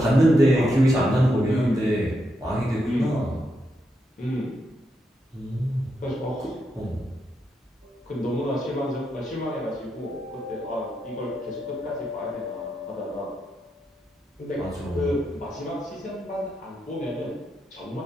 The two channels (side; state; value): both; normal; correlation 0.82